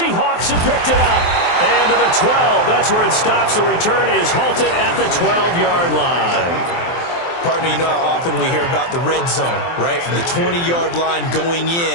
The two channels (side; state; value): right; late; 23 ms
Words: have picked it up. And to the 12, that's where it stops. The return is halted at the 12-yard line. Partner, you know how often we hear about the red zone, right? From the 20-yard line going